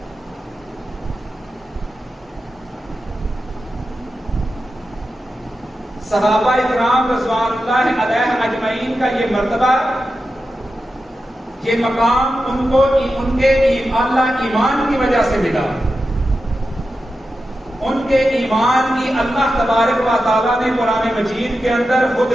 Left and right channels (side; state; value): both; normal; correlation 0.91